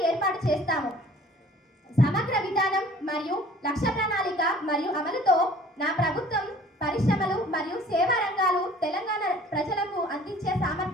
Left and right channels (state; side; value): normal; both; correlation 0.50